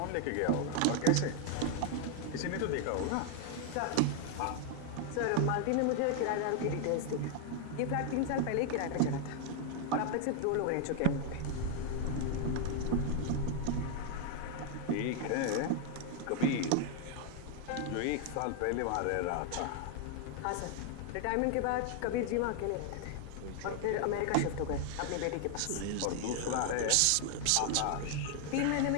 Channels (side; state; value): both; different; correlation 0.00